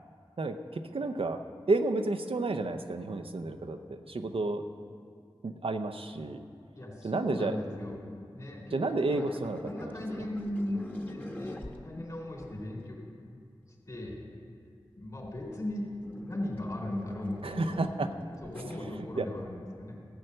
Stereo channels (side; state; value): both; normal; correlation 0.78